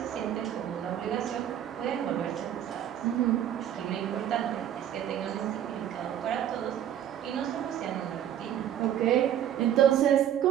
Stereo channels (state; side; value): quieter; left; 10.5 dB